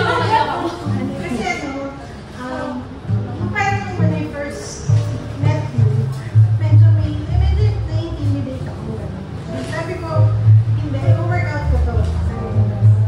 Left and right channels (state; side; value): identical; both; correlation 1.00